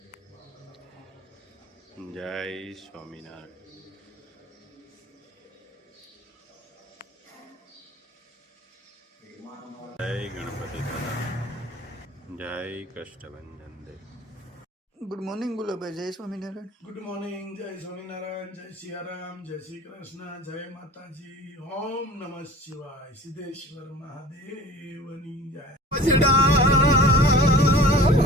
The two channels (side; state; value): both; normal; correlation 0.44